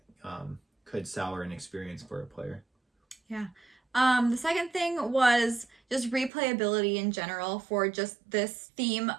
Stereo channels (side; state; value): left; drops out; at 6.3 s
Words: could sour an experience for a player. Yeah. The second thing was just replayability in general for just this theme